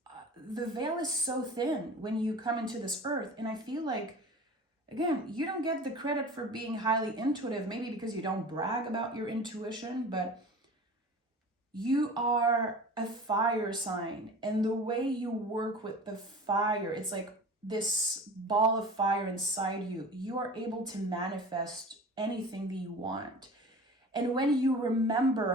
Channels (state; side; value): normal; both; correlation 0.38